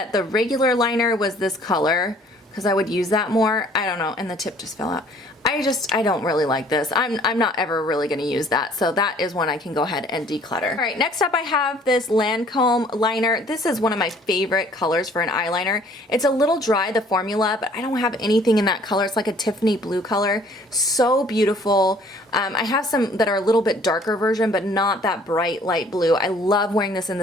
the regular liner was this color because I would use that more. I don't know, and the tip just fell out. I don't really like this. I'm not ever really gonna use that, so that is one I can go ahead and declutter. All right, next up I have this Lancome liner. This is one of my favorite colors for an eyeliner. It's a little dry, the formula, but I don't have anything in that color. It's like a Tiffany blue color. So beautiful. I have some that are a little bit darker version, but not that bright light blue. I love wearing this in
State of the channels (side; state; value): both; normal; correlation 0.57